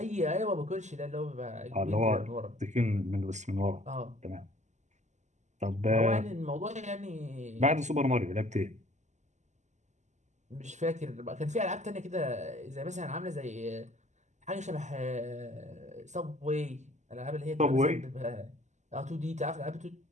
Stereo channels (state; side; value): late; left; 0.34 ms